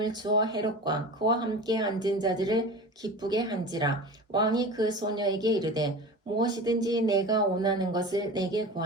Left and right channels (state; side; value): normal; both; correlation 0.33